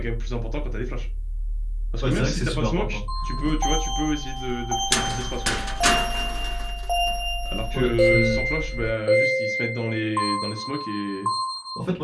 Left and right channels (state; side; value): identical; both; correlation 1.00